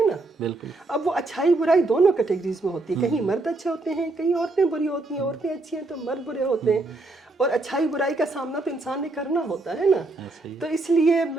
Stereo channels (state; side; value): quieter; left; 3.2 dB